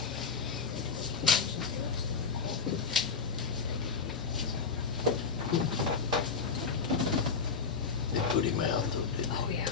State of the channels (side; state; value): right; quieter; 5.4 dB